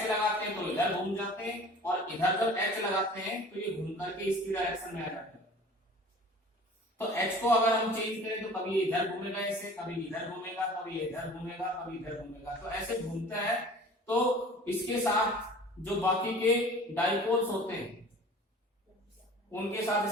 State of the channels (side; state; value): both; normal; correlation 0.44